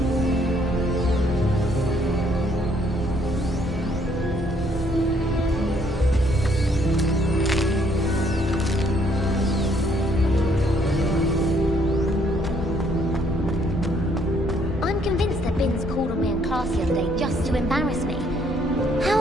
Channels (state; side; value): normal; both; correlation 0.67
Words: I'm convinced that Binns called on me in class the other day just to embarrass me.